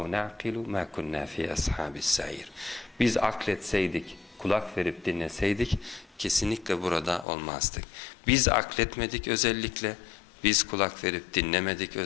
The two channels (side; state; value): right; drops out; at 7.2 s